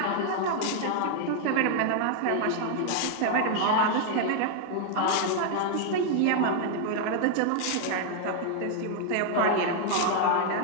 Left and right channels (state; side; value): different; both; correlation 0.00